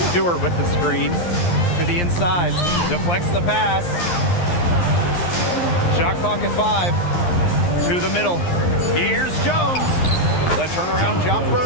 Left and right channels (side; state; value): right; late; 11 ms